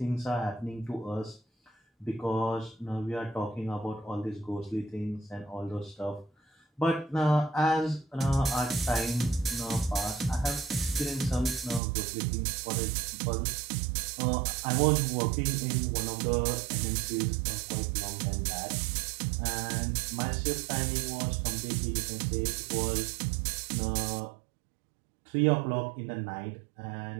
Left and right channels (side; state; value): left; drops out; at 11.8 s